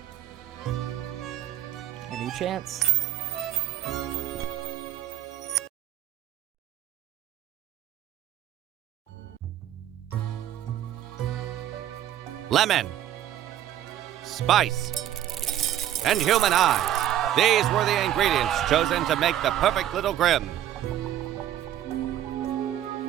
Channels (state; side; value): quieter; left; 11.8 dB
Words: A new chance. Lemon, spice, and human eyes. These were the ingredients chosen to make the perfect little Grim.